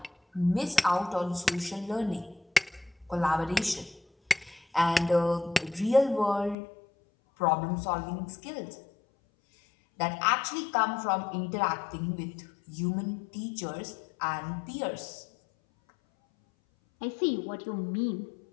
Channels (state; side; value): drops out; right; at 6.6 s